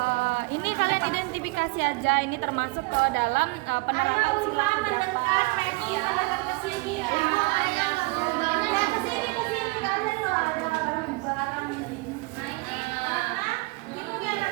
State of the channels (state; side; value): quieter; left; 24.6 dB